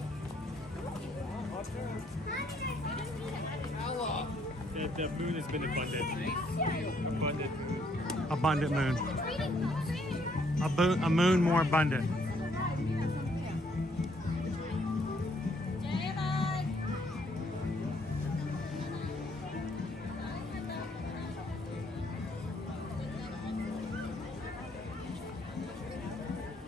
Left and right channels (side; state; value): both; normal; correlation 0.68